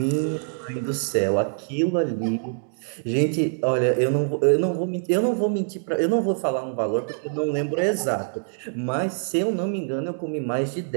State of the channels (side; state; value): left; silent; digital silence